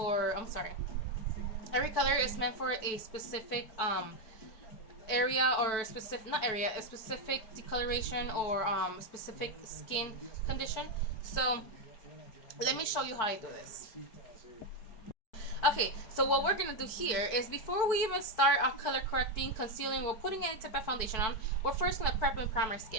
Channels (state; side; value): late; right; 4.6 ms